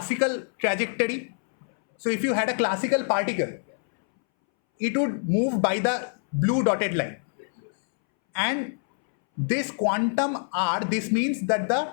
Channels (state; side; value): silent; right; 61 dB below the other